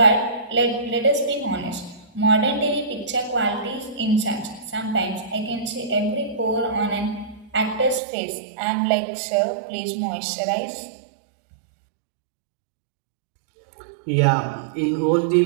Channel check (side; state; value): left; drops out; at 8.0 s